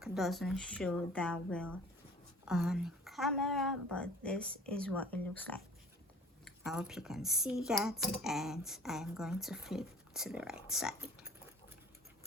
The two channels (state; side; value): normal; both; correlation 0.48